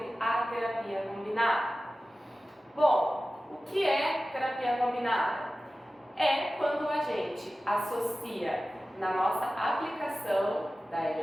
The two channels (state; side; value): normal; both; correlation 0.95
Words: a terapia combinada. Bom, o que é terapia combinada? É quando a gente associa na nossa aplicação da